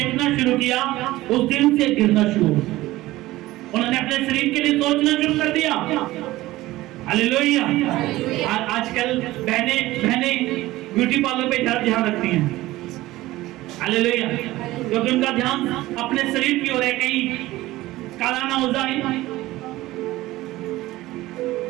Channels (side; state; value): left; quieter; 17.4 dB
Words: शुरू किया उस दिन से गिरना शुरू हुआ। उन्होंने अपने शरीर के लिए सोचना शुरू कर दिया। हालेलुया। आजकल बहने ब्यूटी पार्लर पे ध्यान रखती हैं। हालेलुया। क्योंकि उनका ध्यान अपने शरीर की ओर है, कहीं काला ना हो जाए।